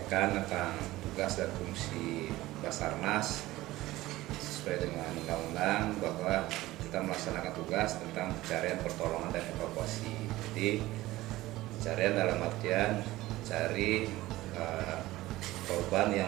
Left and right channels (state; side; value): quieter; left; 17.5 dB